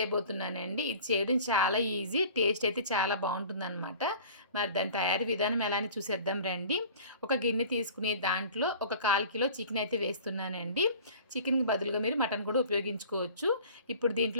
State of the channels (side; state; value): both; inverted; correlation -0.44